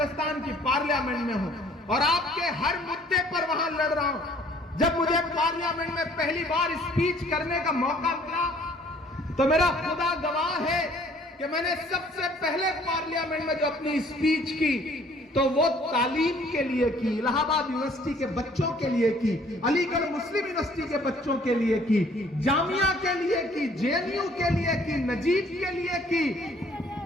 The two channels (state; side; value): normal; both; correlation 0.58